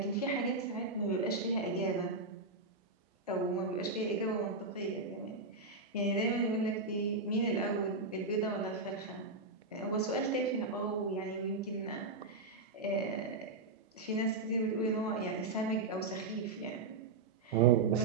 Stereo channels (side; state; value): left; quieter; 3.6 dB